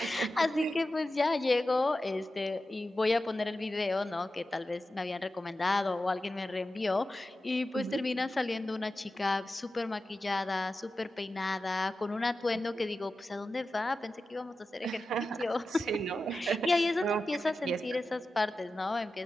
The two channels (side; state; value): both; normal; correlation 0.93